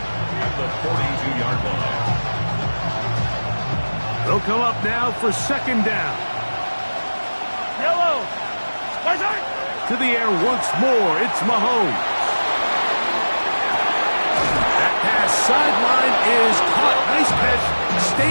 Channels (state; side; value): inverted; both; correlation -1.00